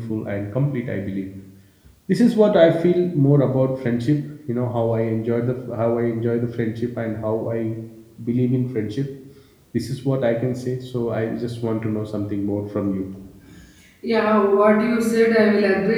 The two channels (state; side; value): identical; both; correlation 1.00